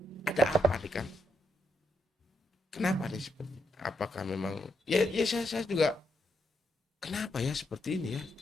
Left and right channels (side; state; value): both; normal; correlation 0.80